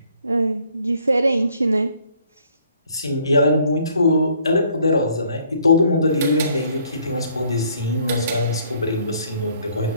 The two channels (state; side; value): inverted; both; correlation -0.63